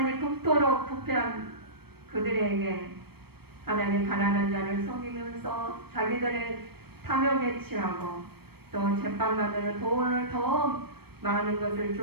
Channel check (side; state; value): left; late; 0.96 ms